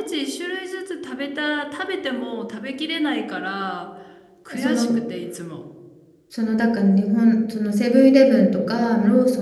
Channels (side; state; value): both; identical; correlation 1.00